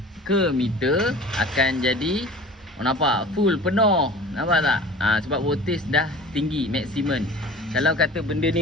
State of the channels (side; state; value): both; normal; correlation 0.41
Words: ke meter akan jadi nampak full penuh. Nampak tak? Sebab voltage dah tinggi maksimum. Kalau kata benda